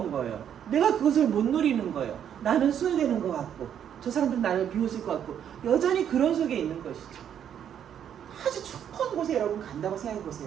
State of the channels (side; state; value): left; quieter; 9.2 dB